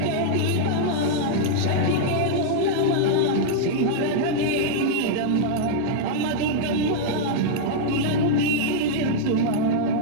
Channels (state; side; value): different; both; correlation -0.01